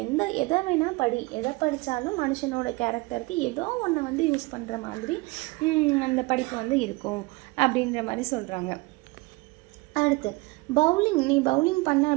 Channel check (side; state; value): left; quieter; 24.0 dB